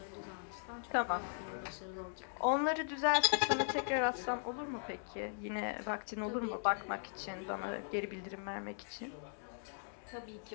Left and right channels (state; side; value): silent; right; digital silence